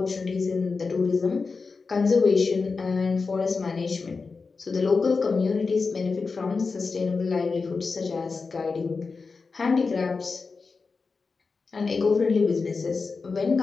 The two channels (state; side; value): quieter; right; 4.5 dB